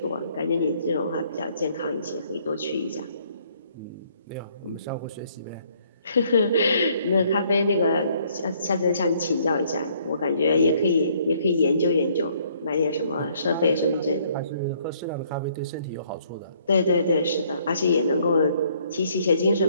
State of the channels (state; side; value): inverted; both; correlation -0.65